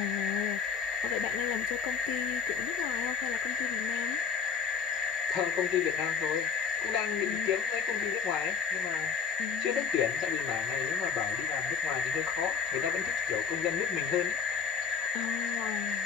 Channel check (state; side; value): quieter; right; 6.3 dB